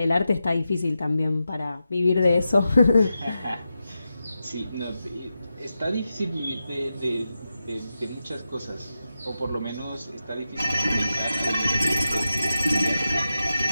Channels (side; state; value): both; inverted; correlation -0.90